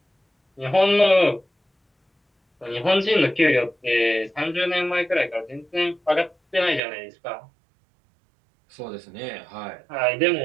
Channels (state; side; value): drops out; left; at 6.8 s